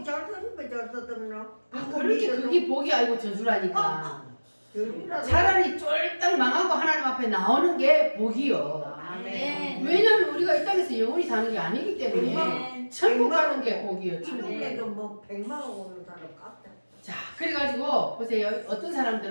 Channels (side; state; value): both; inverted; correlation -1.00